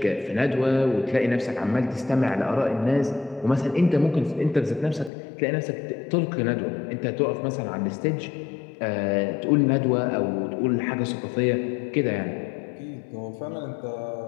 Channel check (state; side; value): drops out; right; at 5.1 s